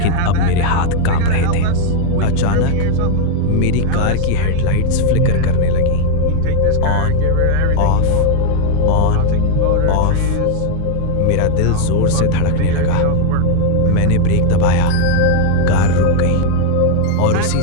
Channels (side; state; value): both; different; correlation 0.01